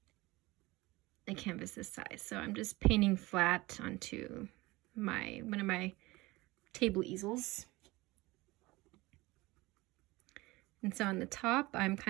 a canvas this size, so I'm just painting flat onto one of my table easels. And so on the top, I'm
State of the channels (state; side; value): quieter; left; 21.1 dB